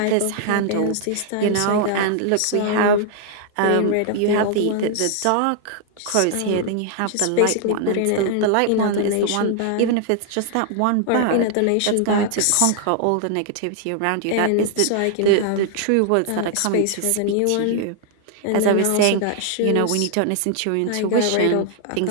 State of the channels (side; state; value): both; different; correlation 0.00